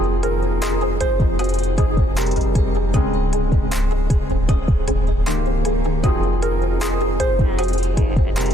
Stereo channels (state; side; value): normal; both; correlation 0.74